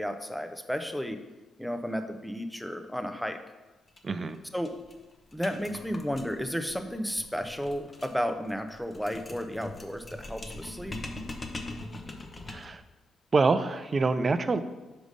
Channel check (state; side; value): normal; both; correlation 0.92